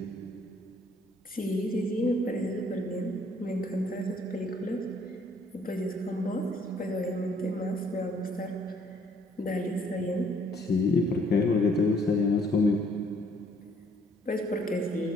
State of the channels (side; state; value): both; normal; correlation 0.63